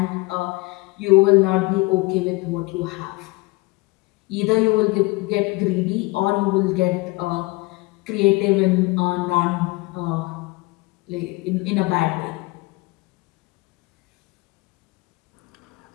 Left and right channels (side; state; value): right; quieter; 23.5 dB